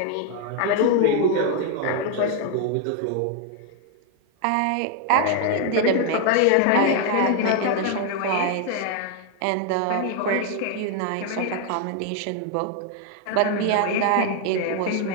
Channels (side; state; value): both; different; correlation 0.01